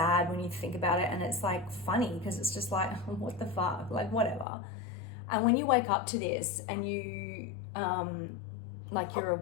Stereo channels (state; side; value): drops out; right; at 4.5 s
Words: when you think about it, and it's like funny because it's just like, what the fuck, like whatever. And when you wake up to this and you like you're